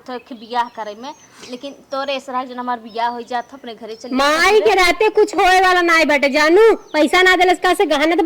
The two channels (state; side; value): identical; both; correlation 1.00